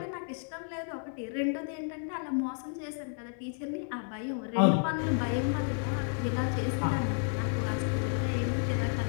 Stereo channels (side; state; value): right; silent; 57 dB below the other